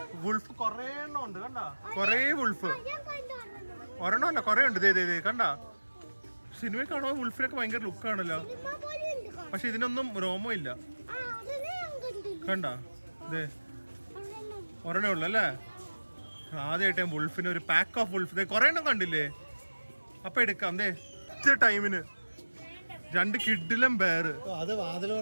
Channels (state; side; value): inverted; both; correlation -1.00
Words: വുൾഫ് കൊറേ എണ്ണം ഉണ്ട്. കണ്ടാ കൊറേ വുൾഫ്. ഒരെണ്ണം അല്ല കൊറേ ഉണ്ട്. കണ്ടാ സിനിമയിൽ കാണുമ്പോ വുൾഫിനൊക്കെ ഭയങ്കര ലുക്കാണല്ലോ. പക്ഷെ ഇതിനൊന്നും രോമം ഇല്ല. കണ്ടാ ഒരെണ്ണേ ഉള്ളു അല്ലേ? ആദ്യമായിട്ട് വുൾഫിന് ഒരു പാക്ക് ഓഫ് വുൾഫ് കൊറേ എണ്ണം കണ്ടില്ലേ? അപ്പൊ എടുക്കാം ടൈമിന് 2 കിഡിലും ബെയർ.